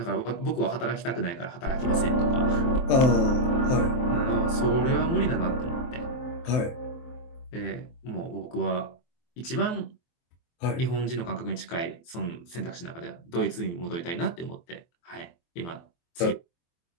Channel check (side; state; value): right; late; 23 ms